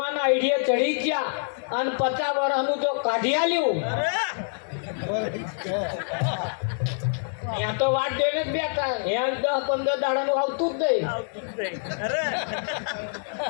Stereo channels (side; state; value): right; silent; digital silence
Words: આઈડિયા ચડી ગયા અને 50 વર્ષનું જો કાઢી આલ્યું, ત્યાં તો વાત જોઈને જ બેઠા. 10-15 દાડાનું આવતું જ નહીં,